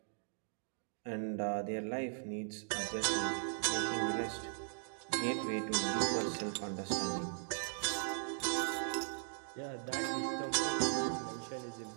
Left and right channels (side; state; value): left; silent; digital silence